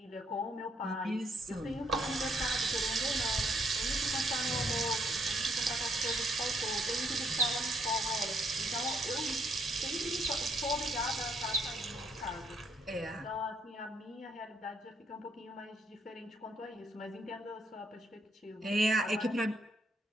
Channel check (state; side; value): normal; both; correlation 0.71